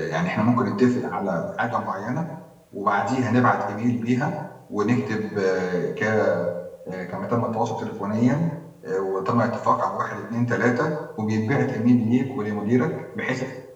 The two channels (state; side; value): identical; both; correlation 1.00